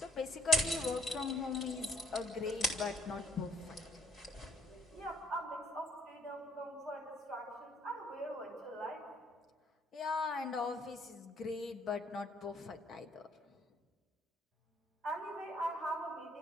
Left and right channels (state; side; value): normal; both; correlation 0.65